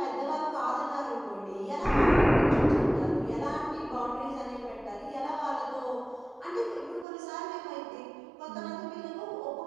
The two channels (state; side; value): drops out; left; at 7.1 s